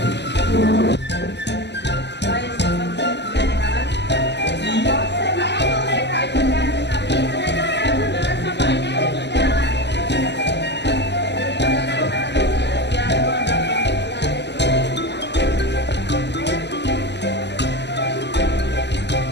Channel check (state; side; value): late; right; 0.50 ms